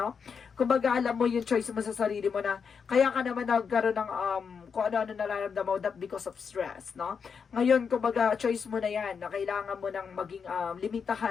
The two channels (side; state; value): right; quieter; 6.2 dB